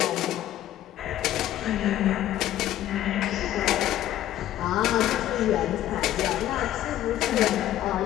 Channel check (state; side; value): quieter; right; 12.9 dB